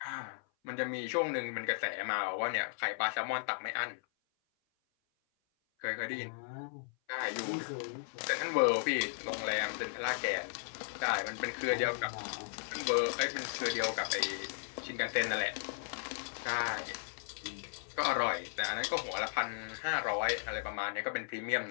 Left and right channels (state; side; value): silent; right; 54 dB below the other